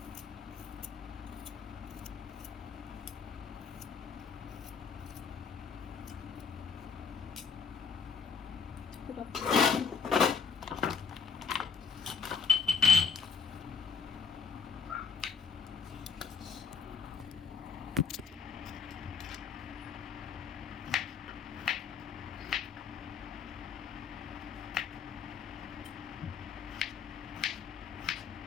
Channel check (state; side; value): quieter; right; 5.8 dB